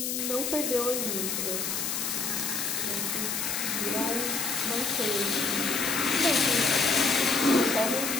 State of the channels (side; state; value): left; noise; hiss, 1 dB below the sound